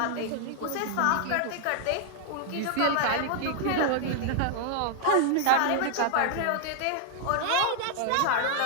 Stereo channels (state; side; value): different; both; correlation 0.00